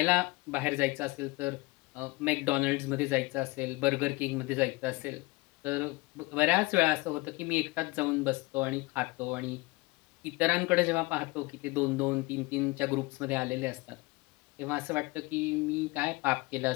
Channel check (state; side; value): quieter; right; 23.2 dB